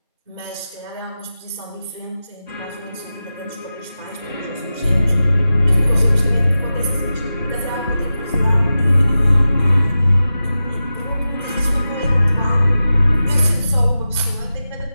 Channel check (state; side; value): inverted; both; correlation -0.93